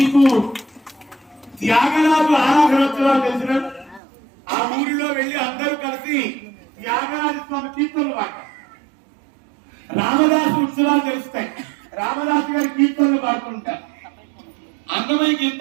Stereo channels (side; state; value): left; drops out; at 4.0 s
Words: త్యాగరాజు ఆరాధనోత్సవాలు తెలిసిన ఆ ఊరిలో వెళ్లి అందరూ కలిసి త్యాగరాజ స్వామి కీర్తనలు పాడతారు. రామదాసు ఉత్సవాలు తెలుస్తాయి, రామదాసు గారి కీర్తనలు పాడుతుంటారు, అన్నమయ్య